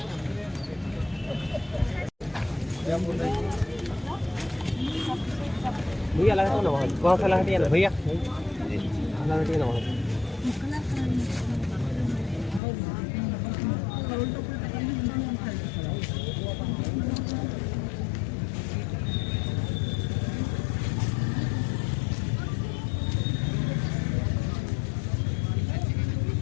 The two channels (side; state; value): right; drops out; at 12.6 s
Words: भैया लगा ना, कौन सा लगा ना भैया, लगा ना।